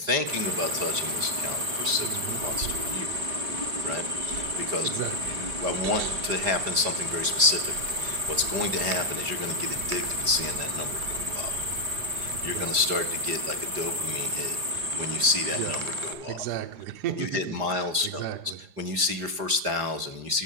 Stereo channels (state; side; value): late; left; 5.0 ms